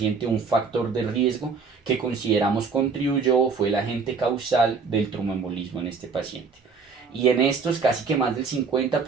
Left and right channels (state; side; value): quieter; left; 5.1 dB